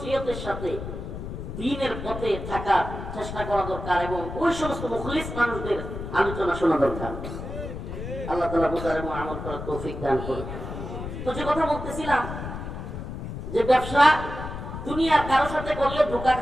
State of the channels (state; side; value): noise; left; rumble, 7 dB below the sound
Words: সাথে দ্বীনের পথে থাকার চেষ্টা করা দরকার, এবং ওই সমস্ত মুখলিস মানুষদের আলোচনা শোনা দরকার। আল্লাহ তাআলা বুঝার এবং আমল করার তৌফিক দান করুন। তো যে কথা বলতেছিলাম, যে ব্যবসা দুনিয়ার কারোর সাথে করলে ধোঁকা